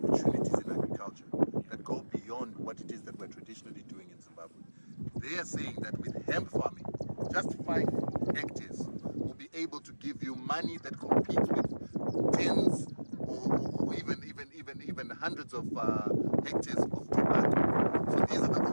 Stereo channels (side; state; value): both; inverted; correlation -1.00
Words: in agriculture that go beyond what it is that we're traditionally doing in Zimbabwe. They are saying that with hemp farming, just 5 hectares will be able to give you money that competes with tens or even hundreds of hectares of tobacco. So these are the